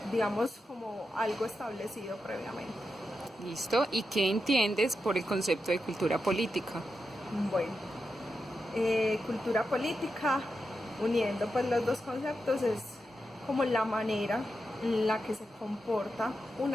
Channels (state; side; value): normal; both; correlation 0.88